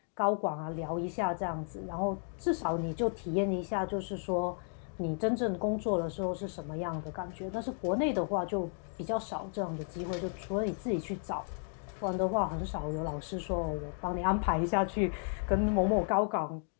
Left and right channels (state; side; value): silent; right; 55 dB below the other